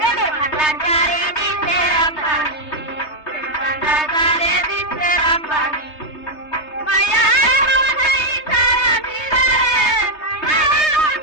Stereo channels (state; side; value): late; right; 3.2 ms